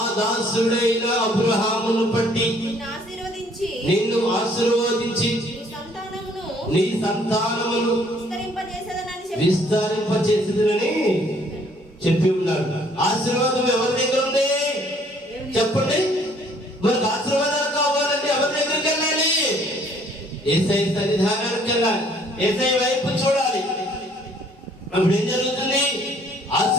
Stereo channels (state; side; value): normal; both; correlation 0.61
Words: దాసుడైన అబ్రహామును బట్టి నిన్ను ఆశీర్వదించి నీ సంతానమును విస్తరింపచేసేదనని చెప్పి ఉన్నాడు. ఆశీర్వాదం ఎవరి దగ్గర ఉంది చెప్పండి? మనకు ఆశీర్వాదాలు కావాలంటే ఎవరి దగ్గరికి వెళ్ళాలి? యేసయ్య సన్నిధానానికి వెళ్ళాలి, యేసయ్య వైపు చూడాలి. అప్పుడు ఏం జరుగుతుంది?